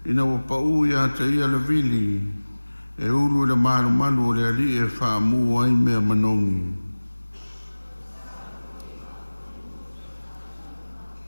ina ua pa'u ia te ia le vili e ulu le manu o le ali e whaamu ai mea manongi.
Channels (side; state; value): both; inverted; correlation -1.00